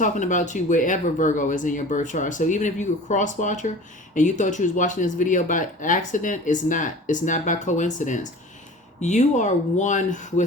about you wherever Virgo is in your birth chart. So even if you were a cross watcher and you thought you was watching this video by accident, it's not. It's not by coincidence. You are one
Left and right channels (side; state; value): both; normal; correlation 0.40